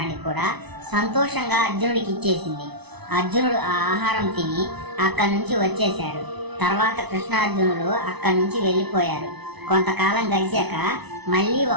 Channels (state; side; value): late; left; 0.99 ms